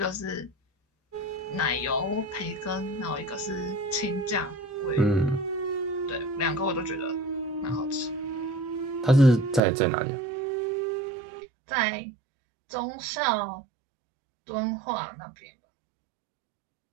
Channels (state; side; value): drops out; left; at 9.6 s